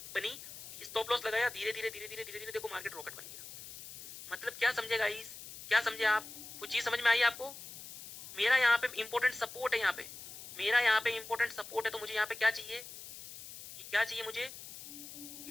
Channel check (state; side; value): noise; left; hiss, 13 dB below the sound